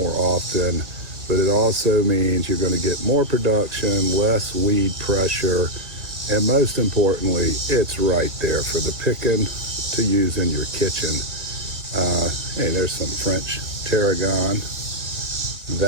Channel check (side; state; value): left; late; 1.7 ms